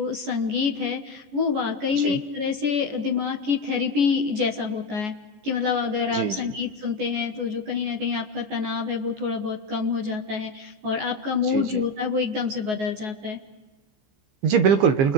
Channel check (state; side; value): late; left; 14 ms